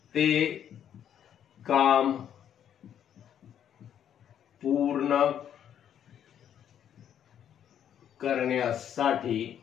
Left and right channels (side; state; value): right; quieter; 9.6 dB